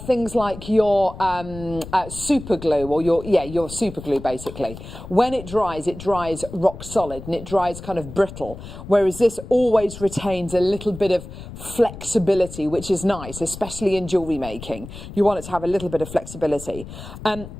things like your super glue or your super glue, basically, when it dries rock solid and it dries kind of brittle, whereas this always retains a little bit of flexibility, which is nice, especially in jewellery making. You want it to have a little bit of flexibility.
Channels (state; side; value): noise; left; rumble, 13 dB below the sound